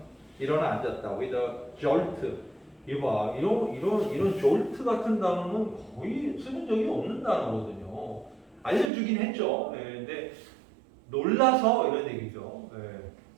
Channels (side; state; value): left; drops out; at 8.9 s